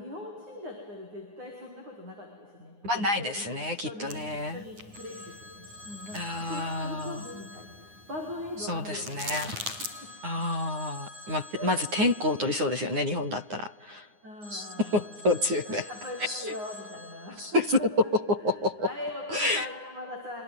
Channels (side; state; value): left; late; 9.7 ms